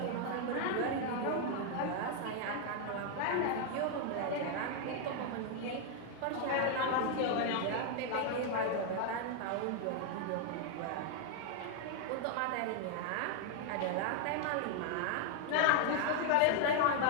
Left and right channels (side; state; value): both; different; correlation 0.00